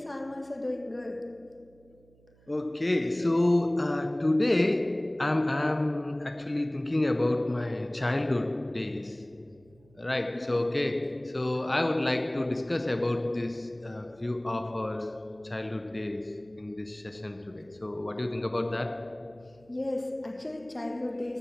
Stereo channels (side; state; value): right; noise; hum, 29 dB below the sound